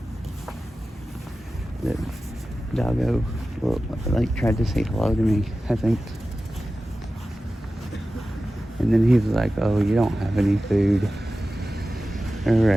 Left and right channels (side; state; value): both; normal; correlation 0.94